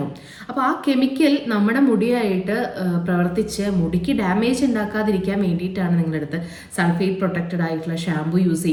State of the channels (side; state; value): both; identical; correlation 1.00